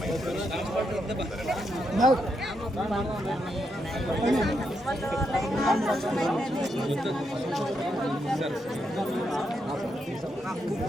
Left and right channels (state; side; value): normal; both; correlation 0.81